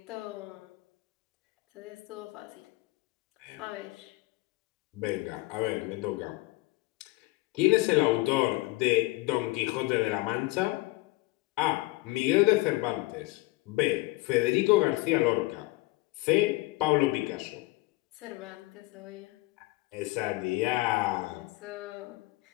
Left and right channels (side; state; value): right; quieter; 21.7 dB